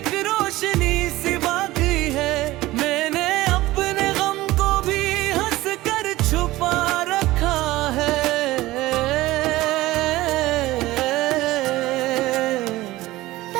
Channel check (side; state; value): left; quieter; 17.8 dB